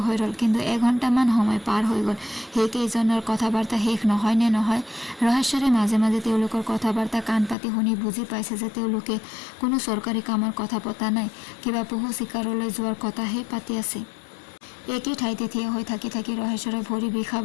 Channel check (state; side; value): drops out; right; at 7.6 s